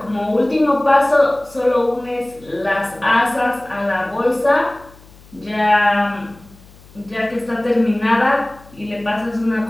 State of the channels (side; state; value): left; noise; hum, 24 dB below the sound